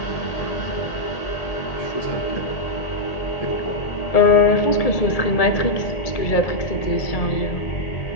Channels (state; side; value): late; right; 1.8 ms